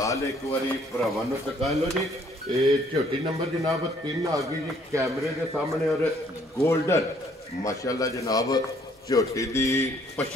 ਇੱਕ ਵਾਰੀ ਭਰਾਵਾਂ ਨੂੰ ਤਕਾ ਲੋ ਜੀ ਇਹ ਝੋਟੀ ਨੰਬਰ ਜਨਾਬ 3 ਆ ਗਈ ਜੀ ਕੈਮਰੇ ਦੇ ਸਾਹਮਣੇ ਔਰ 골ਡਨ ਮਾਸ਼ਾਅੱਲਾ ਜਨਾਬ ਝੋਟੀ ਦੀ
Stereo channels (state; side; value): normal; both; correlation 0.63